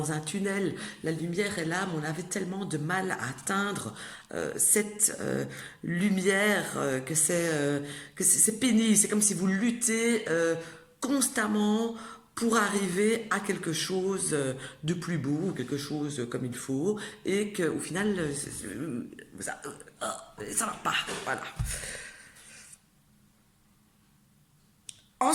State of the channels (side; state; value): both; identical; correlation 1.00